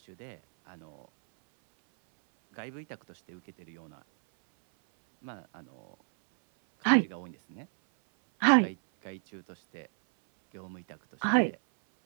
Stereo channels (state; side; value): silent; left; 57 dB below the other